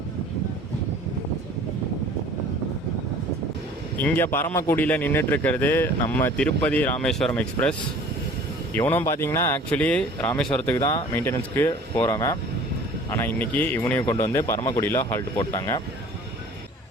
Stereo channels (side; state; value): both; normal; correlation 0.48